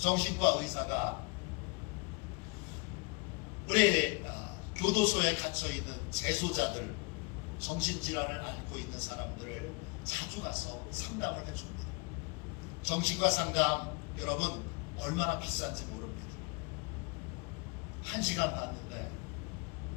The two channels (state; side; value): quieter; right; 29.1 dB